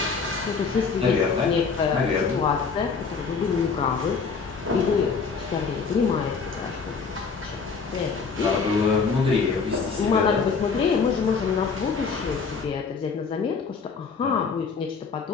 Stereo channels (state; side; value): quieter; right; 5.2 dB